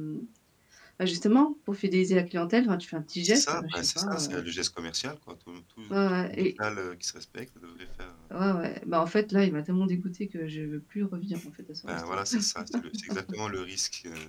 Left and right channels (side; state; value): both; identical; correlation 1.00